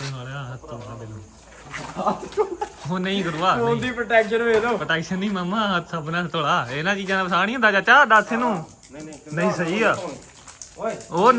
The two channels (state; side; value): identical; both; correlation 1.00